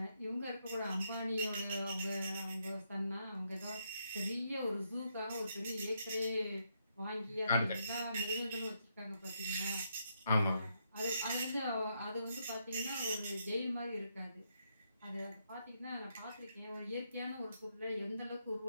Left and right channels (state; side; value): inverted; both; correlation -0.78